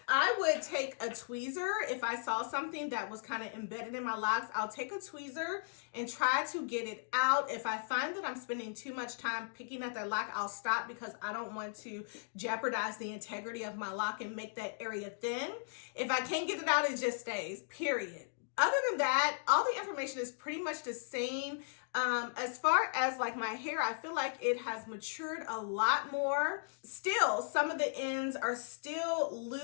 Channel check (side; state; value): right; silent; digital silence